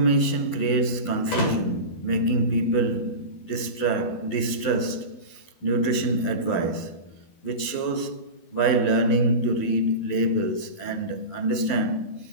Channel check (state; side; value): late; right; 11 ms